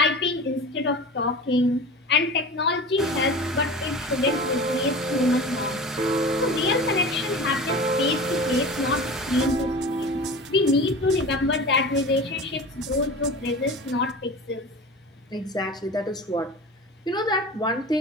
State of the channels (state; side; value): normal; both; correlation 0.34